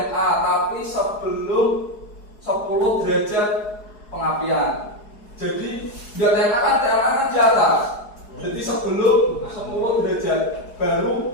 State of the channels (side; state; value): right; late; 4.7 ms